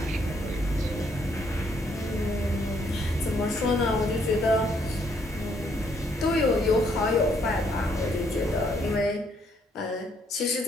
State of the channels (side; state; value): both; normal; correlation 0.70